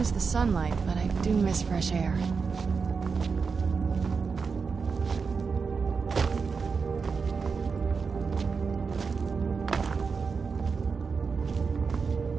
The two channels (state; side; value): quieter; left; 5.2 dB